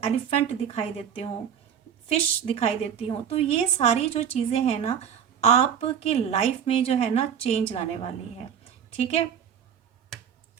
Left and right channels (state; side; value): quieter; left; 8.5 dB